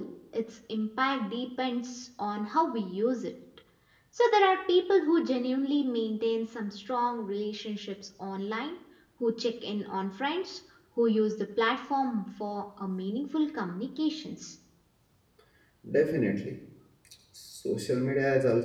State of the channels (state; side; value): identical; both; correlation 1.00